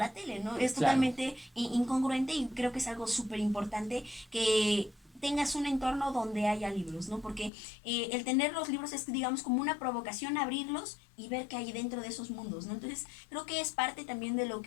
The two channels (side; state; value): right; drops out; at 7.5 s